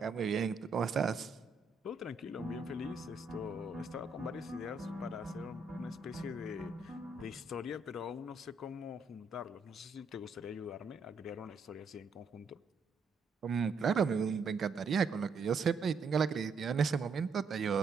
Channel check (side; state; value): left; quieter; 4.0 dB